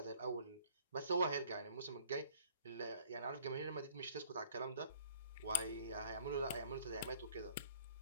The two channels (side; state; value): both; inverted; correlation -0.55